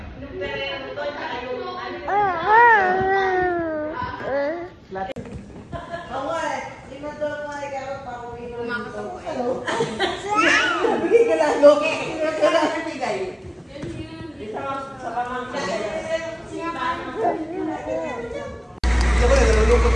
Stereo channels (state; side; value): identical; both; correlation 1.00